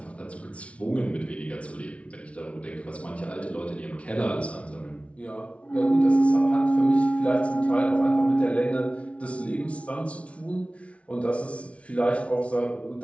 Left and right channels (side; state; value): right; late; 0.063 ms